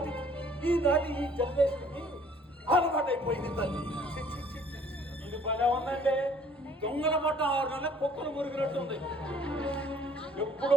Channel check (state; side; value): normal; both; correlation 0.57